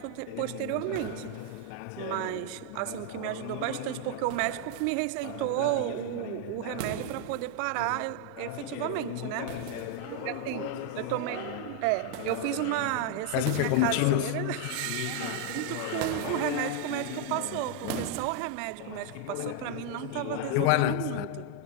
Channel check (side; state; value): both; different; correlation 0.00